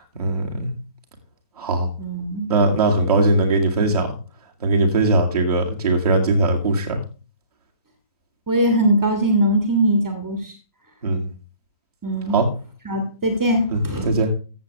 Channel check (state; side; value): inverted; both; correlation -0.51